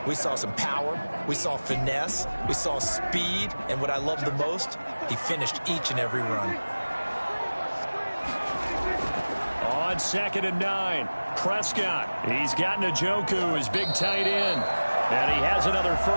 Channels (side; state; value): both; inverted; correlation -1.00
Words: We saw some power, we saw finesse, we saw speed, and what I love the most, he finished each and every run. On 2nd and 9, Prescott. He's got Njoku, his big tight end. And he has another